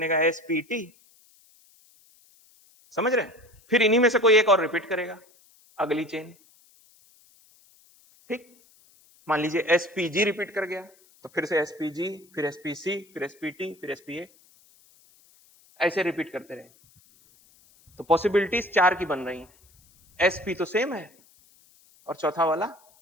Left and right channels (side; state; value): left; noise; hiss, 30 dB below the sound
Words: एसपीटी। समझ रहे हैं, फिर इन्हीं में से कोई एक और रिपीट करेगा अगली चेन। ठीक, मान लीजिए एसपीजी रिपीट कर गया तो फिर से एसपीजी, फिर एसपीसी, फिर एसपीटी, फिर एसपीए, ऐसे रिपीट करते रहे। तो पॉसिबिलिटीज 4 की बन रही हैं, एसपी तो सेम है, और चौथा वाला